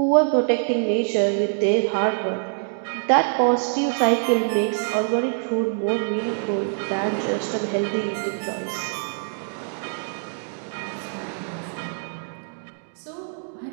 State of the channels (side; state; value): left; silent; digital silence